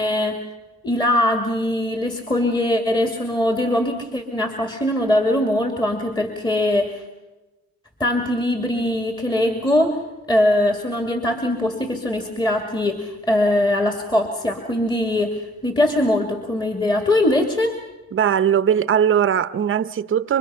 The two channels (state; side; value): normal; both; correlation 0.58